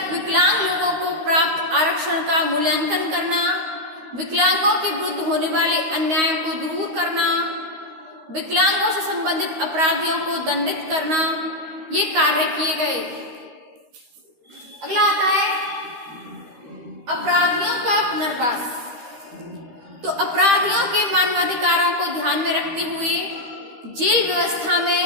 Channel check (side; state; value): left; late; 13 ms